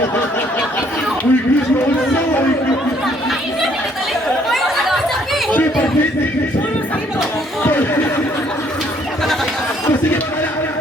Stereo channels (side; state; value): both; normal; correlation 0.65